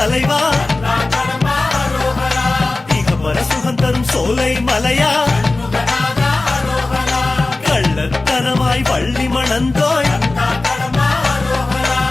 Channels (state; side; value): quieter; right; 3.2 dB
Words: இகபர சுகம் தரும் சோலை மலையா, கள்ளத்தனமாய் வள்ளி மணந்தோய்,